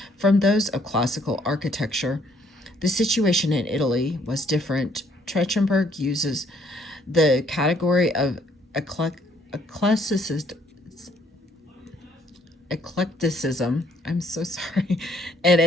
from those of classical architecture. The situation in Italy was different. Trachtenberg uses the category of eclecticism, I'm so sorry, in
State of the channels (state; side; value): normal; both; correlation 0.66